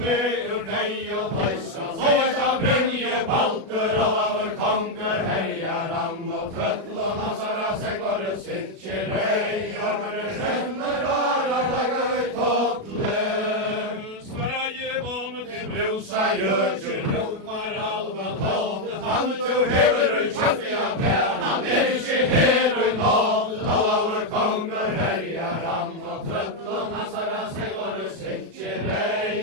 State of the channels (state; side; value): late; left; 37 ms